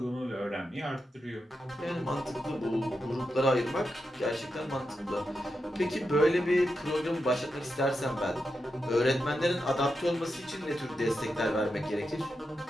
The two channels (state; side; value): normal; both; correlation 0.88